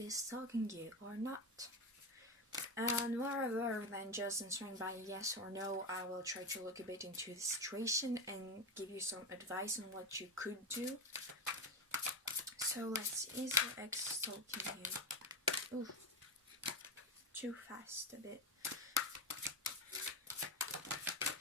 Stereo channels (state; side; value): normal; both; correlation 0.15